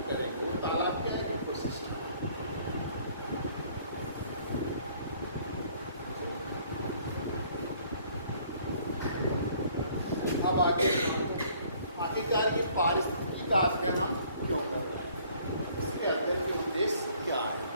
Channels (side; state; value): both; inverted; correlation -0.59